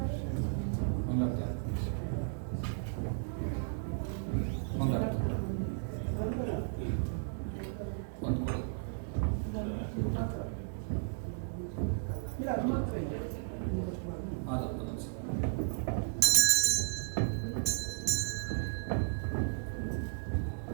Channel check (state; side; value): silent; left; digital silence